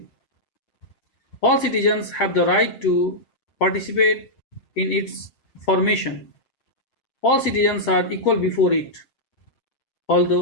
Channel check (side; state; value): right; late; 8.0 ms